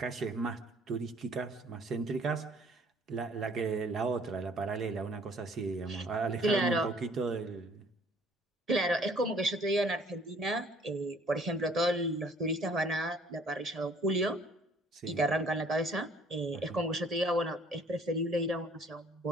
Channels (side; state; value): both; normal; correlation 0.57